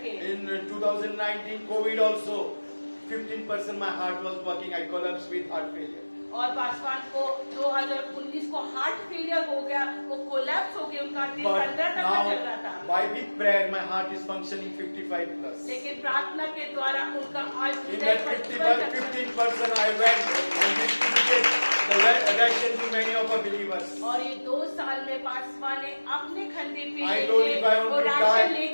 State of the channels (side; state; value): both; inverted; correlation -1.00